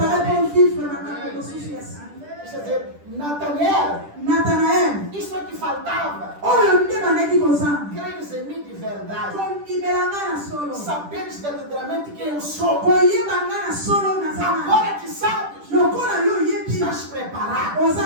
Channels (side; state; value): left; late; 10 ms